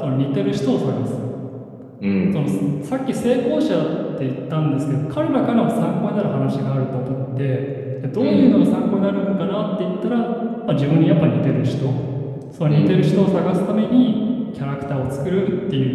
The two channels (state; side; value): identical; both; correlation 1.00